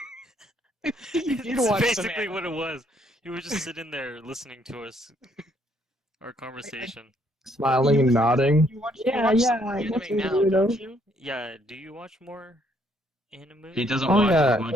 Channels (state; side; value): normal; both; correlation 0.69